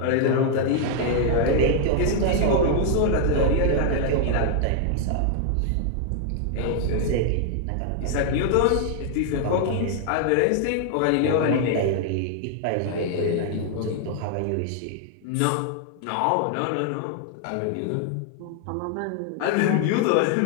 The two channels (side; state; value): both; different; correlation 0.00